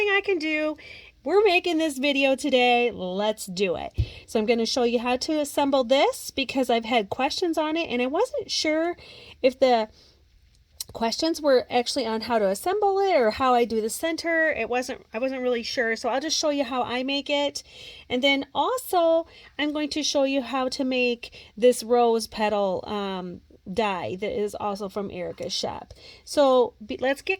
I can do. We're making this video today. Let's do it. So I'm going to show you how to assemble this because I've had questions on it and I wasn't sure if the questions were actually on how to assemble it or how I do the center. I wasn't really sure, so I'll just show you how I make it. And then also I'm going to show you how to make this rose petal die that is also from Erica's shop. So let's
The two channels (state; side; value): identical; both; correlation 1.00